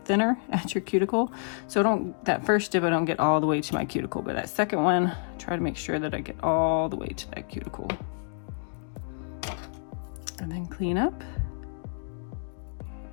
at your cuticle. So that first dip, I don't get all the way to my cuticle, but that second one, try to make sure that I get all the way to that cuticle. And then clean up.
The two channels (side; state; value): right; silent; digital silence